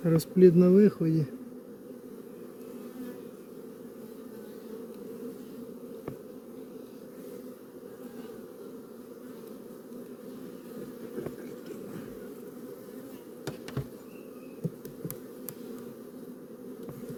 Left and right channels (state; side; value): identical; both; correlation 1.00